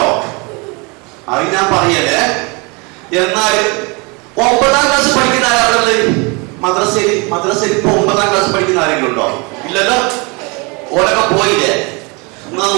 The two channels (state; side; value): quieter; left; 29.4 dB